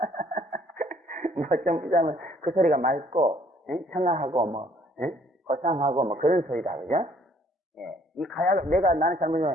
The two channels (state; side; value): normal; both; correlation 0.62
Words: 뭐 좀 비자면 그 소리가 맑고 청아하고 고상하고 그런 소리다, 그죠? 예. 이 나는